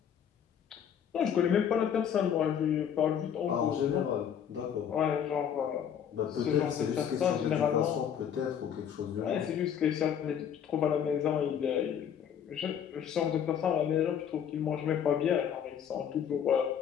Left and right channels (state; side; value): quieter; right; 8.6 dB